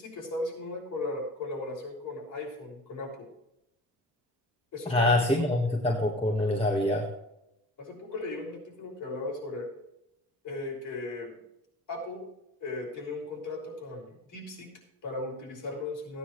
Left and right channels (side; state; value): both; normal; correlation 0.40